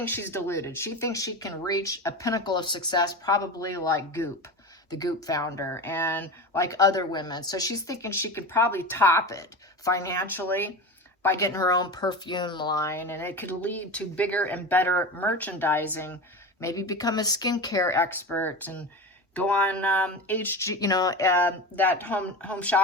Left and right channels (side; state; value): both; normal; correlation 0.27